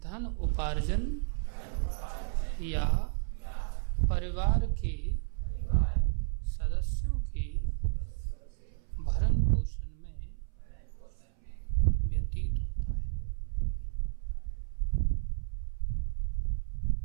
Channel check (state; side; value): silent; left; 56 dB below the other